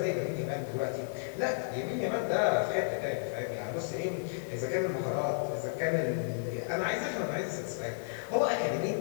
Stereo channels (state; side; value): silent; right; digital silence